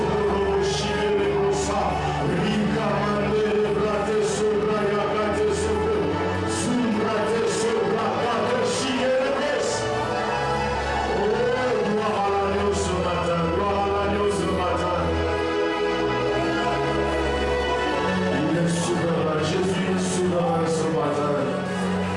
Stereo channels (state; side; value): identical; both; correlation 1.00